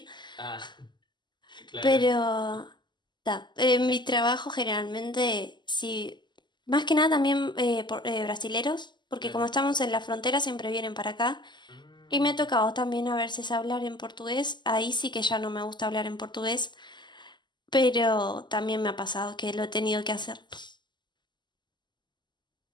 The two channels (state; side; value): late; right; 0.21 ms